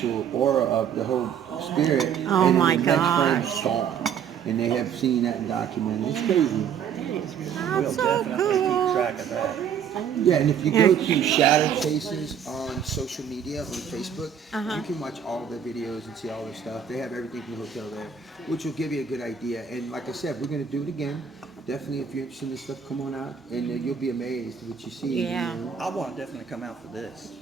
aura of the whole spirit, Oh and my then the next frame gosh. is gone. And they have seen that and documented. It's crazy. we'll That's so definitely keep cool. track of that. Yeah, and if you go to Shadow Chases on social media, on Facebook, you can watch all their videos and see all their stuff. They have everything from the hotel there, which will give you a good idea. And like I said, we're going to do it again. Definitely, if you're interested in this stuff, come on out, and you'll be amazed at what you see. Yeah. You know? I want to definitely come out for this.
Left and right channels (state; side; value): quieter; left; 7.9 dB